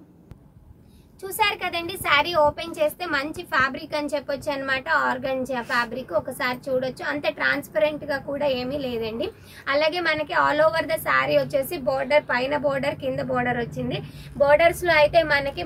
చూసారు కదండి, శారీ ఓపెన్ చేస్తే మంచి ఫ్యాబ్రిక్ అని చెప్పొచ్చు అనమాట. ఆర్గంజా ఫ్యాబ్రిక్ ఒకసారి చూడొచ్చు. అంతే ట్రాన్స్పరెంట్ గా కూడా ఏమీ లేదండి. అలాగే మనకి ఆల్ ఓవర్ ద శారీ వచ్చేసి బోర్డర్, పైన బోర్డర్ కింద బోర్డర్ వచ్చింది. బోర్డర్స్ లో అయితే మనకి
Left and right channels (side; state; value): both; identical; correlation 1.00